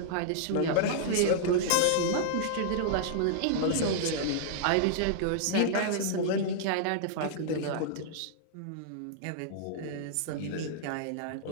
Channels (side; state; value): both; different; correlation -0.01